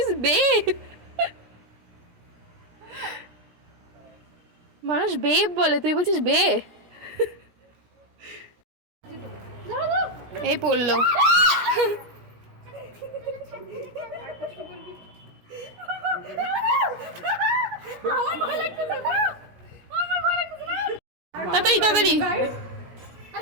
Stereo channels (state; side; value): late; left; 17 ms